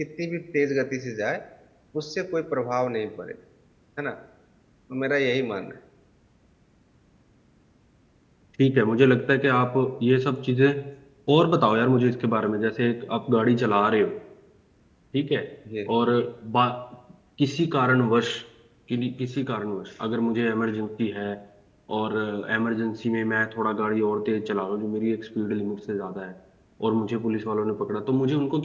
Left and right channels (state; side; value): identical; both; correlation 1.00